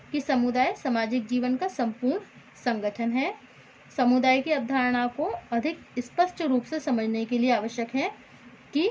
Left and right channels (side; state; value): both; identical; correlation 1.00